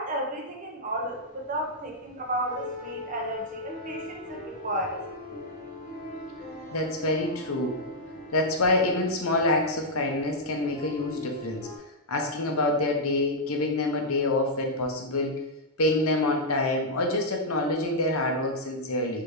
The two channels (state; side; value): normal; both; correlation -0.06